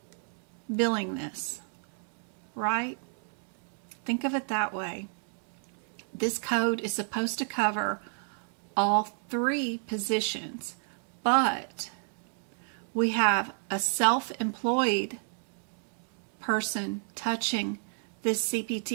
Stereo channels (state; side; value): silent; left; 57 dB below the other